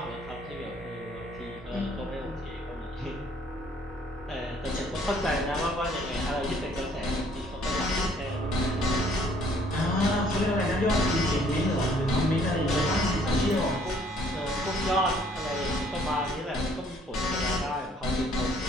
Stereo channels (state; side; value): normal; both; correlation 0.61